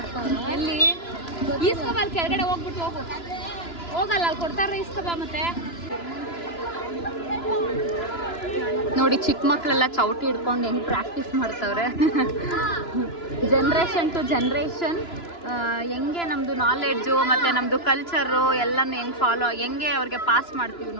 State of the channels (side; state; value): right; late; 2.9 ms